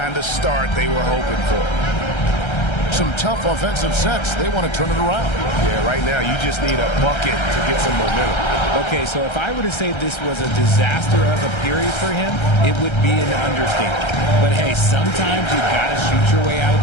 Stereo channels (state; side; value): late; right; 1.3 ms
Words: of start they were hoping for. Some tough offensive sets. They want to turn it around. Yeah, right now you just need a bucket to get some momentum. Okay, so if I were to say this was a disaster of a period for him, it would be an understatement. But hey, sometimes you got to shoot your way out of